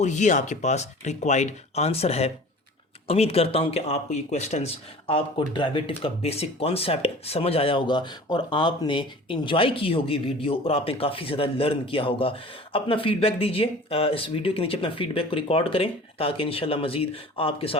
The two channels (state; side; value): normal; both; correlation 0.43